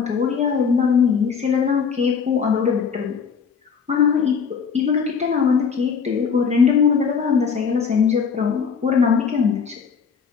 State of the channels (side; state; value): right; quieter; 6.3 dB